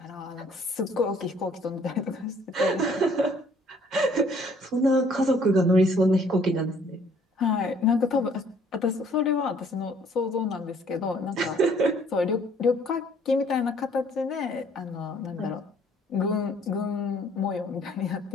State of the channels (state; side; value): normal; both; correlation 0.60